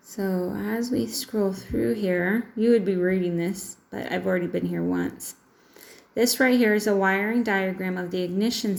So as we scroll through here, you would be reading this, but I've already been here once. This right here is a wiring diagram of the ignition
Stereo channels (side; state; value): both; identical; correlation 1.00